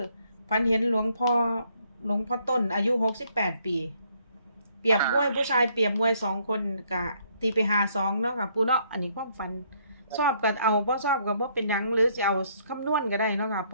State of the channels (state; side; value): inverted; both; correlation -0.68